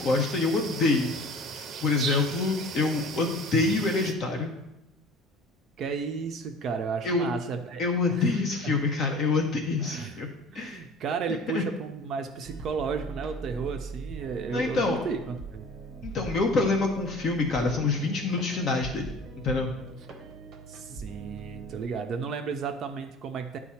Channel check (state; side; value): normal; both; correlation 0.43